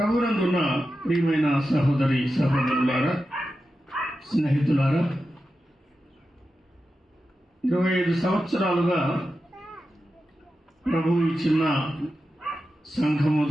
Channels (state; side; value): normal; both; correlation 0.91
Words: ప్రియమైన సహోదరి సహోదరులారా, స్నేహితులారా, 25 సంవత్సరాలుగా ప్రభువు ఈ చిన్న సంఘము